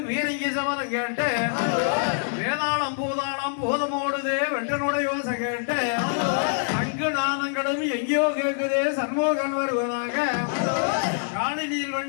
வீரங்கி சமதம் கேட்டு வேதாளம் பூதாளம் போதமோடுதே வென்றனுடைய யோசை கேட்டு அங்கு நாதங்களும் எங்கேயோ கேட்குதே சண்முகன் வருவதாக காணினியில்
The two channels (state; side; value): silent; right; digital silence